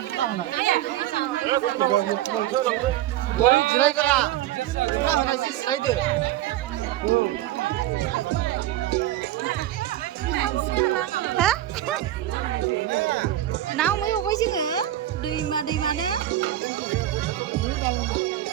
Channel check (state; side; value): quieter; left; 13.6 dB